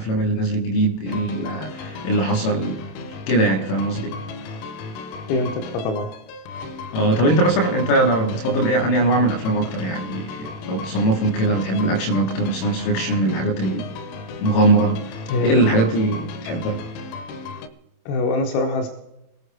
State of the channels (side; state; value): right; late; 27 ms